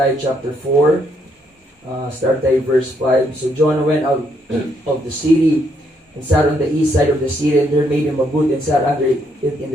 chapter 4. Start tayo verse 5. So Jonah went out of the city and sat on the east side of the city, and there made him a booth and sat under it in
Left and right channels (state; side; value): normal; both; correlation 0.73